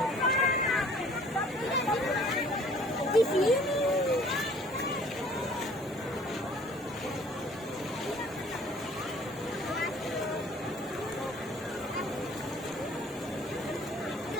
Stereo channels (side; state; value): both; normal; correlation 0.54